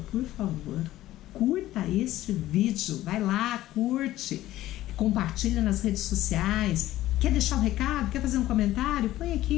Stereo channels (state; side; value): quieter; right; 15.0 dB